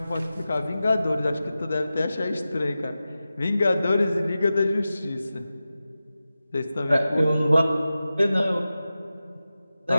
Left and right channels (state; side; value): inverted; both; correlation -0.94